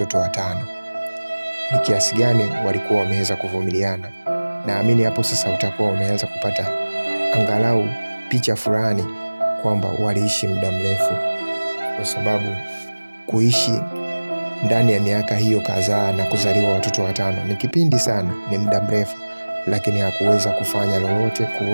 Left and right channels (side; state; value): both; inverted; correlation -1.00